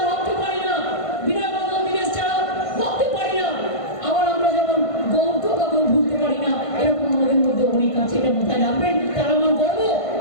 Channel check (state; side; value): late; right; 1.5 ms